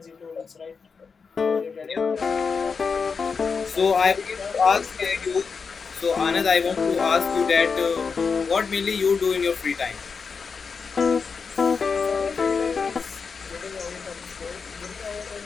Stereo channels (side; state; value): right; quieter; 5.4 dB